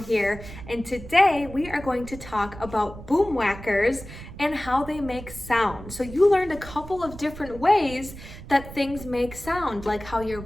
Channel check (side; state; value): right; noise; rumble, 14 dB below the sound